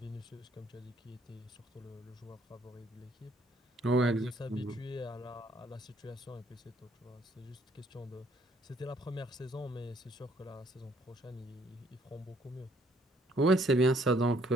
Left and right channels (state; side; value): normal; both; correlation 0.65